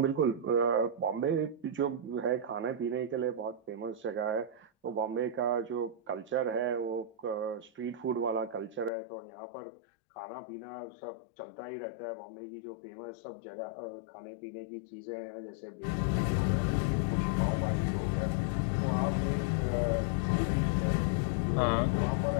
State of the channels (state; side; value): drops out; right; at 8.9 s